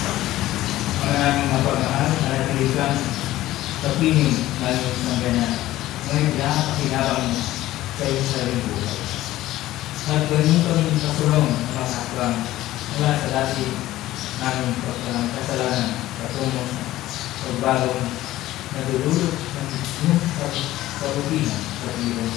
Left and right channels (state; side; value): quieter; right; 15.5 dB